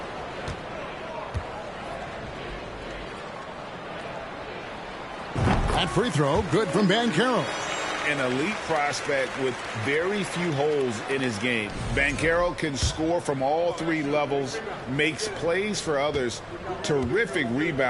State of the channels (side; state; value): both; identical; correlation 1.00